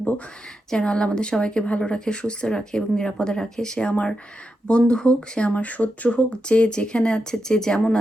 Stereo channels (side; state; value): both; normal; correlation 0.87